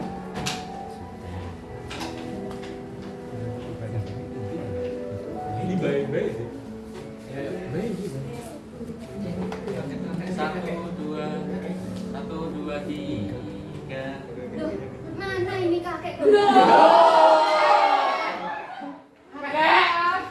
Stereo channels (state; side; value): identical; both; correlation 1.00